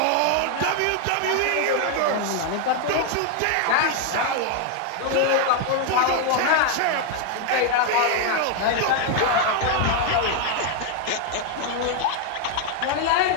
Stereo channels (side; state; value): both; different; correlation 0.00